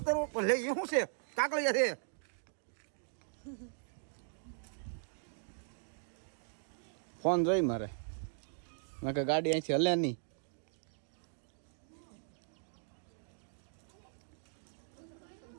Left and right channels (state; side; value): silent; left; digital silence